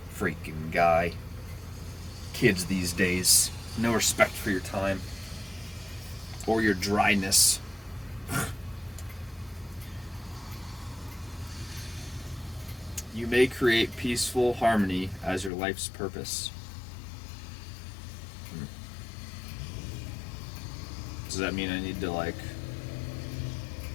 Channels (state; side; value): drops out; right; at 15.5 s